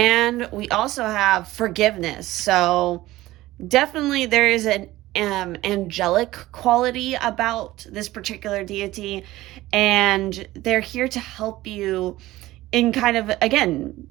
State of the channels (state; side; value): quieter; left; 17.0 dB